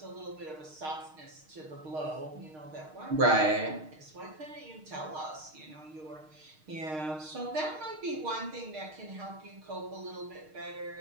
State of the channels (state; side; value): late; left; 6.5 ms